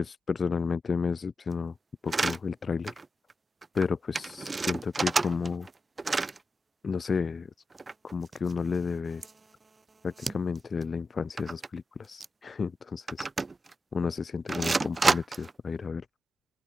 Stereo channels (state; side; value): normal; both; correlation 0.90